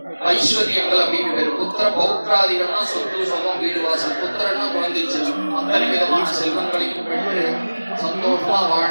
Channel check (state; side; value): inverted; both; correlation -1.00